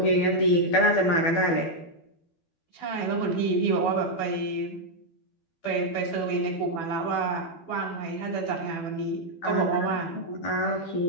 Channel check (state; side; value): late; right; 12 ms